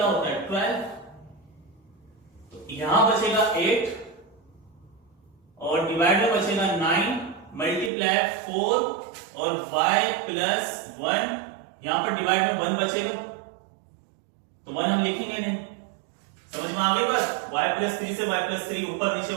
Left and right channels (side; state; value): left; drops out; at 7.9 s